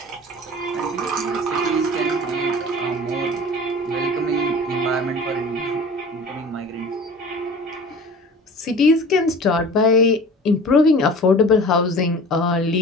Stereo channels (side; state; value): both; normal; correlation 0.41